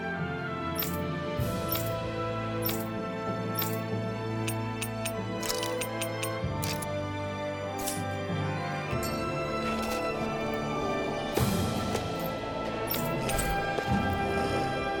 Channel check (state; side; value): identical; both; correlation 1.00